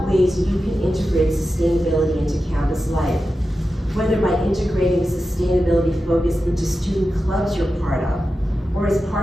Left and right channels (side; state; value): both; normal; correlation 0.92